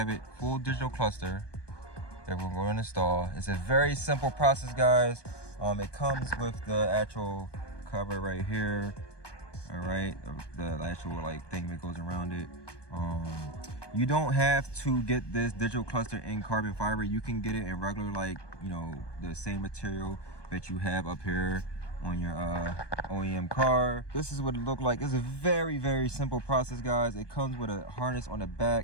it, full digital cluster that we're going to install. It's a very simple process, guys. It comes with the actual cover right here. All right, the actual like thing that goes around it. You don't have to get this digital cluster in carbon fiber. You can get it in regular, like, you know, the same material that you have up here on your OEM car. This is what it looked like. It's a very simple process, guys. It comes with a harness on the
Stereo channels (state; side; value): late; right; 1.2 ms